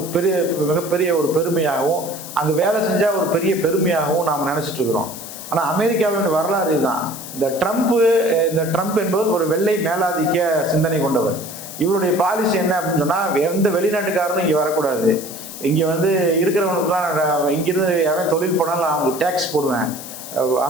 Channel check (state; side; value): noise; left; hiss, 12 dB below the sound